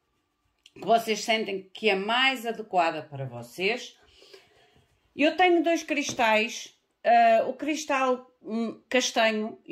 que vocês sentem que é mais adequada para vocês. Eu tenho dois cristais, o cristal castanho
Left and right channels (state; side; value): identical; both; correlation 1.00